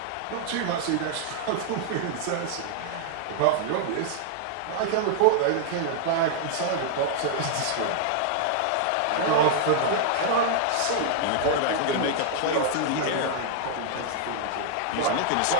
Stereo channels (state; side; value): different; both; correlation -0.01